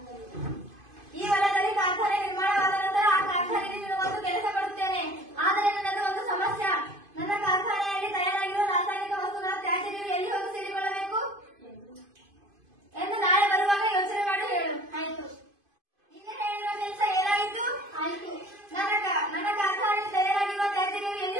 ಈ ಹೊಲದಲ್ಲಿ ಕಾರ್ಖಾನೆ ನಿರ್ಮಾಣವಾದ ನಂತರ ಆ ಕಾರ್ಖಾನೆಯಲ್ಲಿ ನಿನಗೊಂದು ಕೆಲಸ ಕೊಡುತ್ತೇನೆ. ಆದರೆ ನನ್ನದು ಒಂದು ಸಮಸ್ಯೆ. ನನ್ನ ಕಾರ್ಖಾನೆಯಲ್ಲಿ ತಯಾರಾಗಿರುವ ರಾಸಾಯನಿಕ ವಸ್ತುಗಳ ತ್ಯಾಜ್ಯ ನೀರು ಎಲ್ಲಿ ಹೋಗಿ ಸೇರಿಕೊಳ್ಳಬೇಕು ಎಂದು ನಾಳೆ ಬರುವಾಗ ಯೋಚನೆ ಮಾಡಿ ಹೇಳು. ಆಯ್ತು. ನಿನ್ನೆ ಹೇಳಿರುವ ಕೆಲಸ ಏನಾಯಿತು? ಆಯ್ತು. ನನ್ನ ಕಾರ್ಖಾನೆಯಲ್ಲಿ ತಯಾರಾಗಿರುವ ತ್ಯಾಜ್ಯ ನೀರು ಎಲ್ಲಿ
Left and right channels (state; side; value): late; left; 2.5 ms